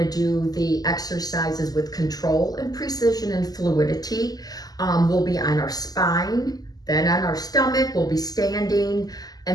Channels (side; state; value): right; late; 0.18 ms